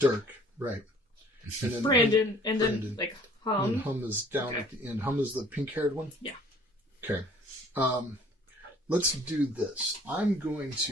right? And then Brandon, and then Brandon. like And Hum. Hum is down at the end. Hum is the pink-haired one. Yeah. Okay. Let's do this. I'm going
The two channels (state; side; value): normal; both; correlation 0.54